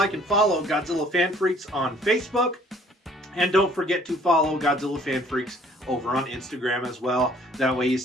and follow Godzilla Fan Freaks on Facebook. And don't forget to follow Godzilla Fan Freaks over on Instagram as well. That way you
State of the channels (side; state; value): both; normal; correlation 0.57